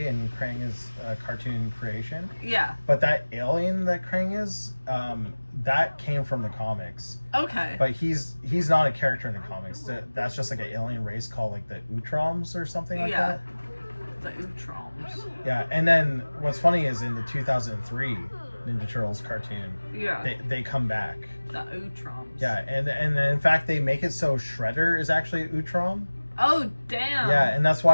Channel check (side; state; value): both; inverted; correlation -1.00